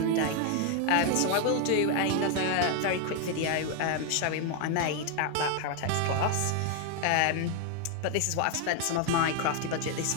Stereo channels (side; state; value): both; different; correlation 0.01